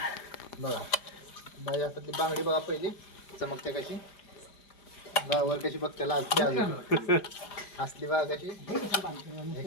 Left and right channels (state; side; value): late; right; 5.0 ms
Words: बघा बाई हातातली बांगडी बघा पहिली चमकते कशी वर कशी बघते लाजते अजून असली बघा कशी.